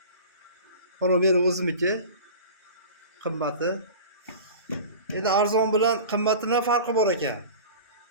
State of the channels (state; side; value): inverted; both; correlation -0.37